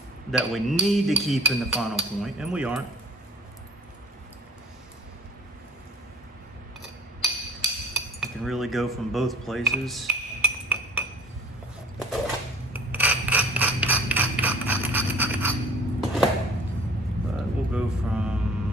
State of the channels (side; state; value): both; normal; correlation 0.47